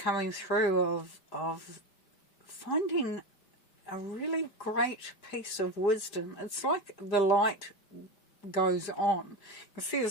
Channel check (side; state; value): right; late; 5.1 ms